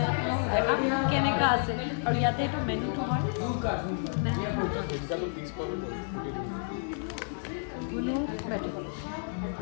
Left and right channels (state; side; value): silent; right; 57 dB below the other